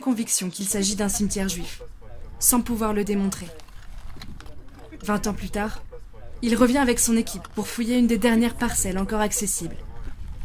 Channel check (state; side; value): identical; both; correlation 1.00